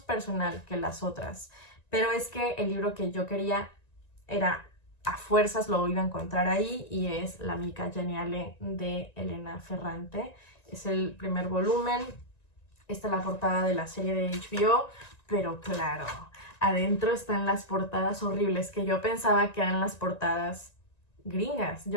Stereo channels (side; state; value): right; late; 1.9 ms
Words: personal que las otras, pero es que el libro que yo quería era a fuerzas lo iba a encontrar ahí, y es La amica geniale de Elena Ferrante. Es el primer volumen. Esta es la portada de la serie de HBO, pero claro, adentro están las portadas horribles que yo pensaba que eran las portadas gringas.